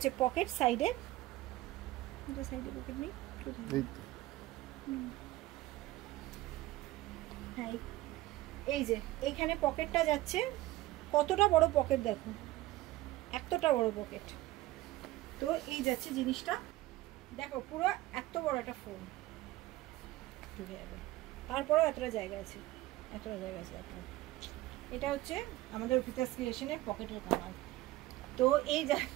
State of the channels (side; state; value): left; quieter; 17.1 dB